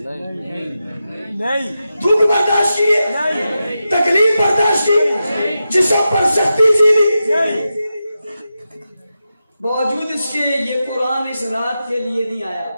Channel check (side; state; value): both; inverted; correlation -0.90